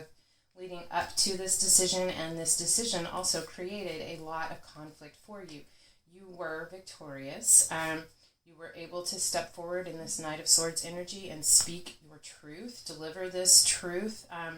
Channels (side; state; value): both; identical; correlation 1.00